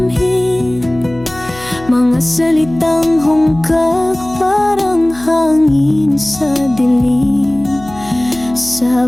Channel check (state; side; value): noise; left; hum, 19 dB below the sound